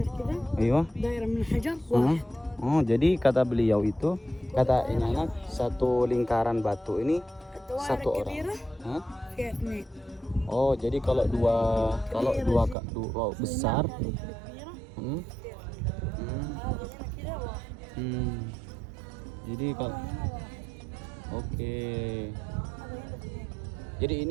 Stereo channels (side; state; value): left; drops out; at 12.8 s